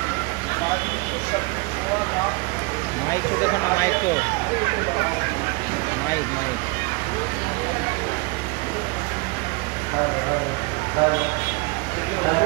مائک کو دیکھو نا، مائک کو، مائک مائک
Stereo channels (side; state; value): left; quieter; 26.4 dB